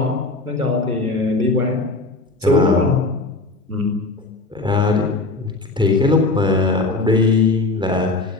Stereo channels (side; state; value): right; quieter; 3.3 dB